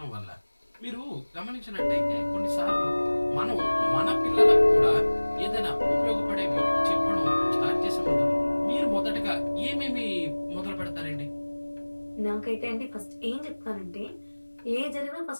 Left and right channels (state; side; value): inverted; both; correlation -1.00